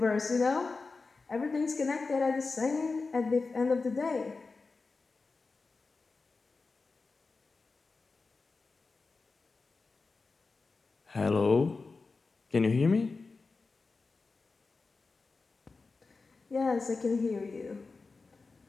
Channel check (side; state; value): right; quieter; 4.1 dB